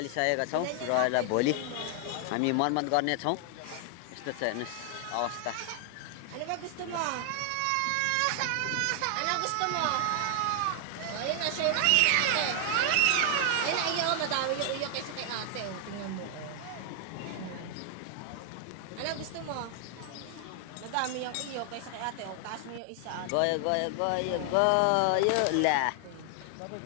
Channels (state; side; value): different; both; correlation 0.00